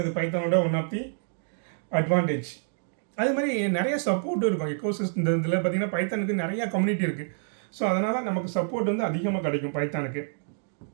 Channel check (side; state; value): left; silent; digital silence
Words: பைத்தானோட ஒன் ஆஃப் தி அட்வான்டேஜ். அதே மாதிரி நிறைய சப்போர்ட்டும் இருக்கும். எக்கோசிஸ்டம் இந்த இதில் பார்த்தீங்கன்னா பைத்தானுக்கு நிறையா கம்யூனிட்டி இருக்குது. ஸோ அதனால் நமக்கு சப்போர்ட் வந்து அதிகமாக கிடைக்கும் பைத்தானுக்கு.